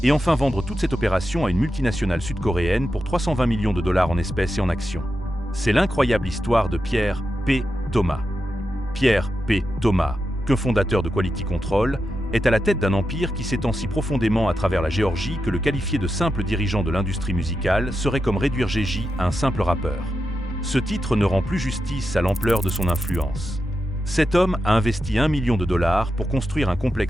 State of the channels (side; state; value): both; normal; correlation 0.88